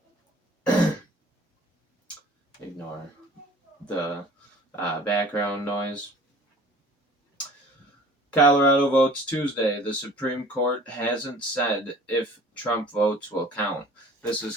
Ignore the background noise. Colorado votes Tuesday. The Supreme Court hasn't said if Trump votes will count. This is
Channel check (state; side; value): normal; both; correlation 0.48